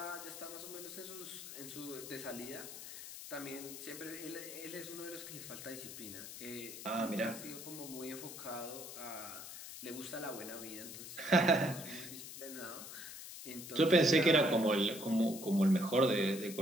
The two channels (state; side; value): noise; left; hiss, 11 dB below the sound